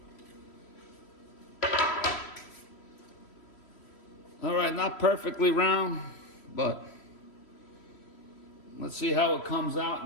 All right, not perfectly round, but let's see how it comes out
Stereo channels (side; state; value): right; late; 3.1 ms